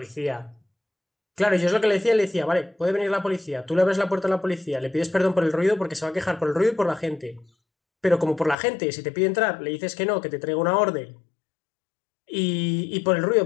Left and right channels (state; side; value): drops out; right; at 8.6 s